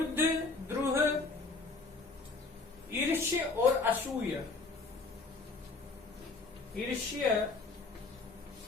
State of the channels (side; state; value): right; quieter; 3.8 dB